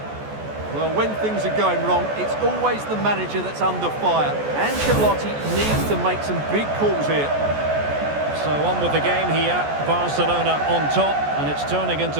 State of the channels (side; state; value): left; late; 14 ms